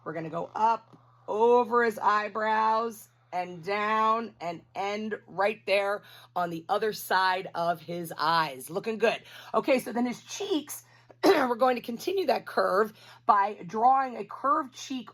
We're going to go up over his eyebrows and down and end right there on the other side of his eyes. Looking good. Okay, so then his cheeks, we're going to continue that curve by drawing a curved cheek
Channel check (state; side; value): identical; both; correlation 1.00